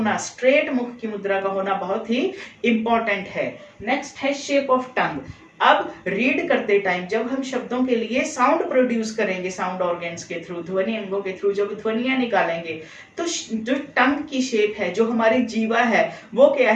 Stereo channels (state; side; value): identical; both; correlation 1.00